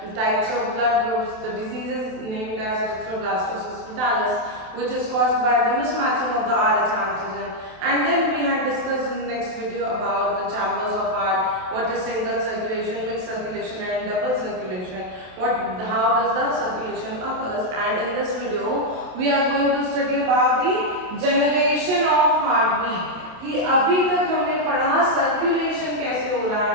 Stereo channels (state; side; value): late; left; 27 ms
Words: types of blood groups, the diseases named as erythroblastosis fetalis, which is caused by the mismatching of the Rh antigen, and then we had discussed in the next video about the chambers of heart, what is single circulation, mixed circulation and double circulation, how does the circulation occurs, and in this video we are going to study about the generation of heartbeat कि अभी तक हमने पढ़ा circulation कैसे हो रहा